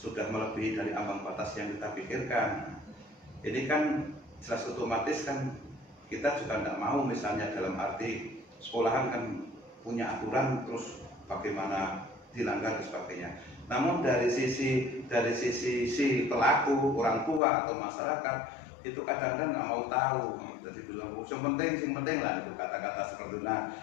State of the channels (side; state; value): right; drops out; at 17.4 s